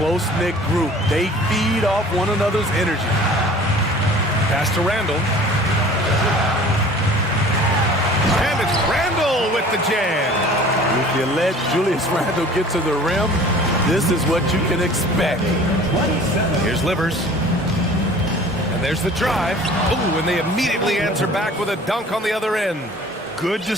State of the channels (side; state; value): both; normal; correlation 0.46